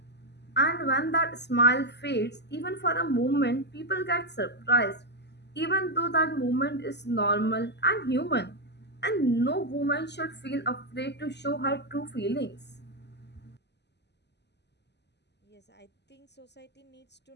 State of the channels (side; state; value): right; late; 0.50 ms